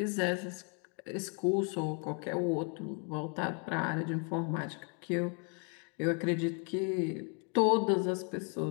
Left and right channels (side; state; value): right; quieter; 38.4 dB